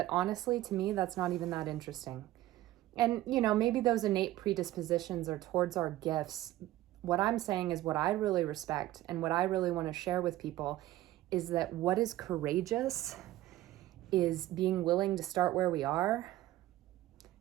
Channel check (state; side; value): quieter; left; 15.4 dB